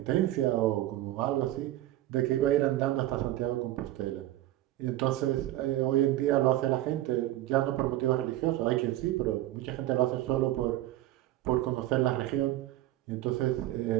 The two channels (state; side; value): quieter; left; 15.0 dB